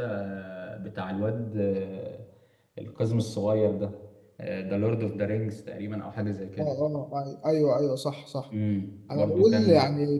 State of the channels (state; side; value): identical; both; correlation 1.00